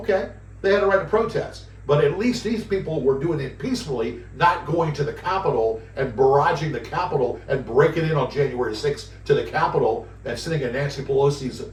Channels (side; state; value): both; identical; correlation 1.00